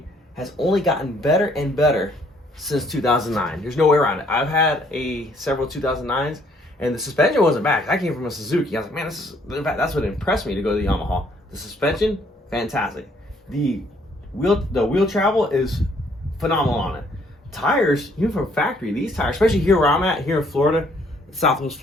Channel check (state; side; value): normal; both; correlation 0.65